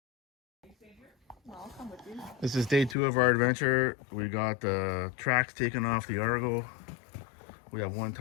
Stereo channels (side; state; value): right; drops out; at 3.0 s